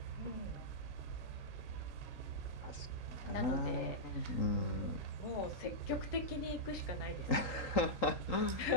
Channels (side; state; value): right; late; 3.8 ms